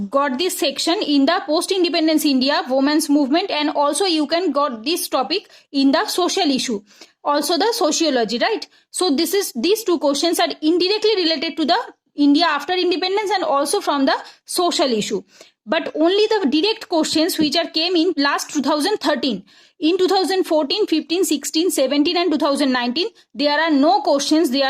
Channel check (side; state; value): both; identical; correlation 1.00